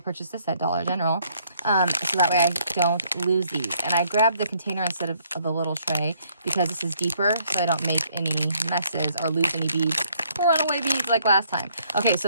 this at Dollar General, so that way I don't lose these. And I grabbed the container instead of the little tray because this is deeper, so I don't make any messes or lose any beads. Runaway beads like last time. Okay,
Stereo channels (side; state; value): both; inverted; correlation -0.67